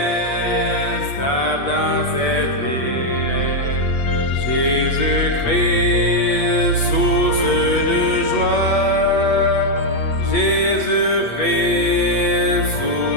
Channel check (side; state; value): right; late; 8.5 ms